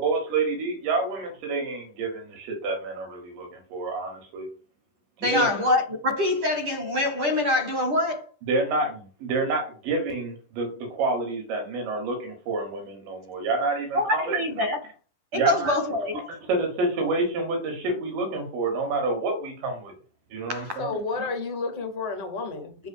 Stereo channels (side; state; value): left; late; 10 ms